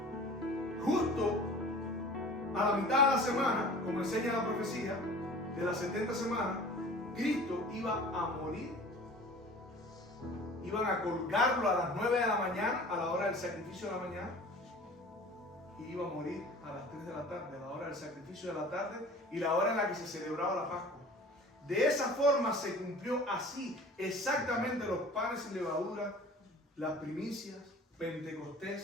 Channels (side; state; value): both; normal; correlation 0.43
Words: justo a la mitad de la semana, como enseña la profecía, de las 70 semanas, Cristo iba a morir. Iban a colgarlo a las 9 de la mañana, a la hora del sacrificio de la mañana, y iba a morir a las 3 de la tarde, a la hora del sacrificio de la tarde y la hora en la que se celebraba la Pascua. De esa forma se cumplió así exactamente los panes sin levadura, las primicias,